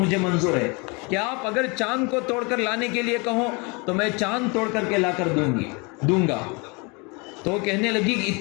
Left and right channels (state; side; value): quieter; right; 29.7 dB